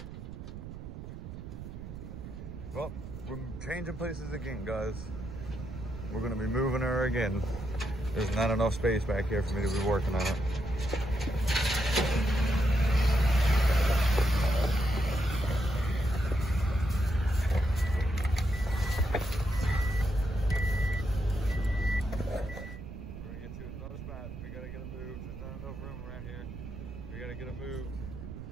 Well, we're changing places again, guys. We're gonna be moving her again. There's not enough space back here for me to be working on it. We're gonna get to another spot. We gotta get her moved. There's not enough room around here. We gotta get her moved.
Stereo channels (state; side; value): noise; right; rumble, 10 dB below the sound